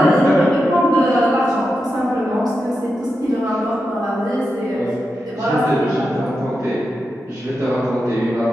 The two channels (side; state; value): both; normal; correlation 0.88